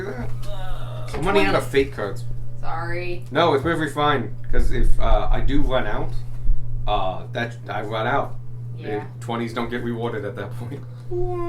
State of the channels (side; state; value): both; identical; correlation 1.00